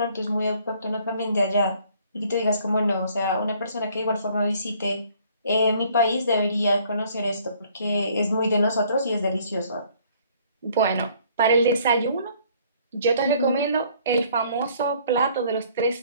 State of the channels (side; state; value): both; inverted; correlation -0.60